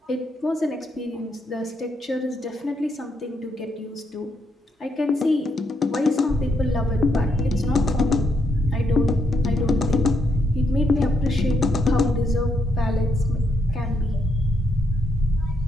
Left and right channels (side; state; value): both; normal; correlation 0.78